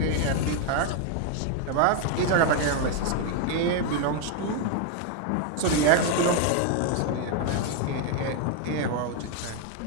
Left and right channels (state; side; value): different; both; correlation 0.00